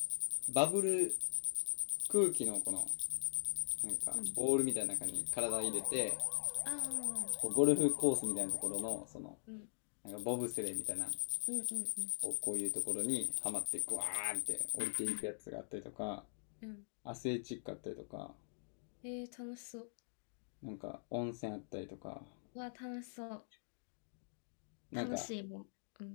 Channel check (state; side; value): silent; right; digital silence